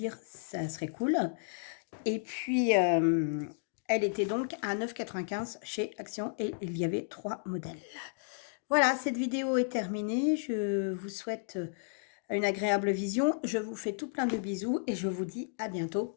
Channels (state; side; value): silent; right; digital silence